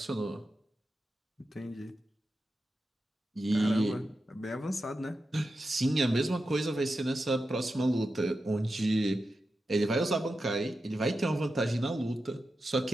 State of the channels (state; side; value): normal; both; correlation 0.90